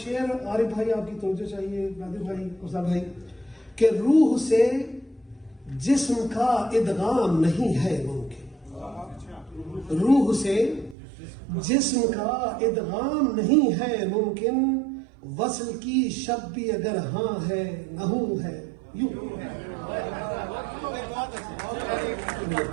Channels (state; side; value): drops out; left; at 11.0 s